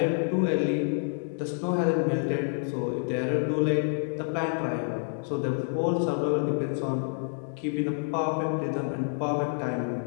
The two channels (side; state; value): right; silent; digital silence